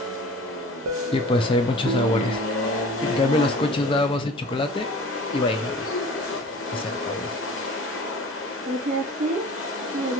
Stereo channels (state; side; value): normal; both; correlation 0.43